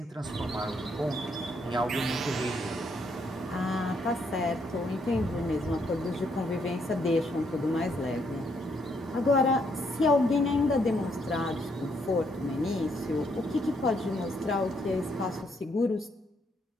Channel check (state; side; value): normal; both; correlation 0.73